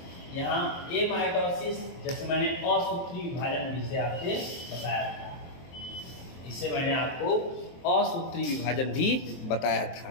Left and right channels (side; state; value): right; late; 23 ms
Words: यहाँ एमाइटोसिस, जैसे मैंने असूत्री विभाजन भी से आपसे बताया था, इसे मैंने आपको असूत्री विभाजन भी बताया था।